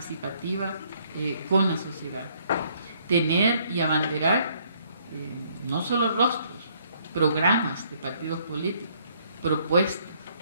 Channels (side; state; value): both; inverted; correlation -0.66